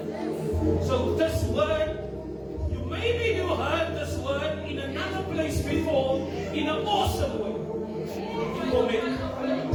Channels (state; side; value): identical; both; correlation 1.00